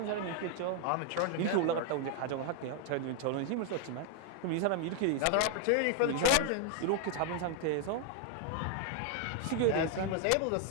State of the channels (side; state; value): both; different; correlation 0.00